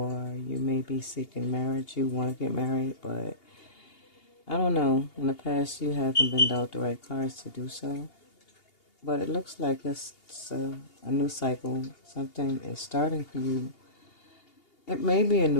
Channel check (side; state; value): right; late; 2.8 ms